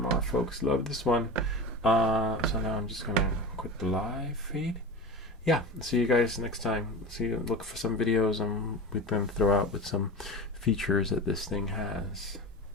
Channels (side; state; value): both; normal; correlation 0.29